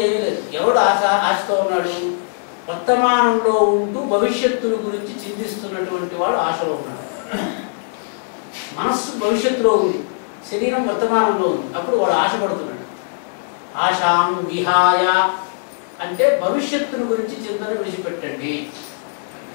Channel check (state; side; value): silent; right; 66 dB below the other